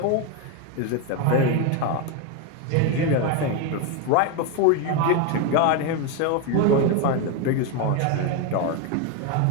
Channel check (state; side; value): different; both; correlation 0.02